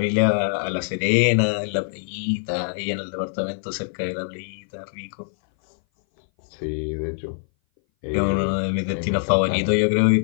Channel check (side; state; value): right; silent; 59 dB below the other